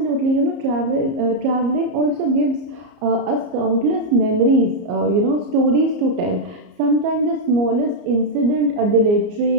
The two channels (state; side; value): late; left; 34 ms